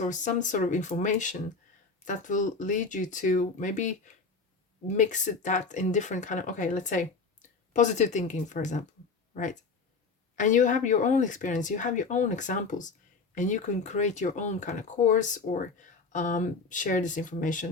some sort of information that will lead you to maybe mix that in different kind of, okay, let's say positive thinking, for example, right? And you have your own experience, you have your own examples, and you can create your own kind of course or share this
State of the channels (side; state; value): right; quieter; 4.4 dB